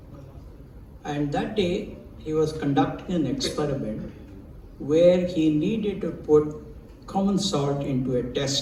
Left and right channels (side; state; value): both; identical; correlation 1.00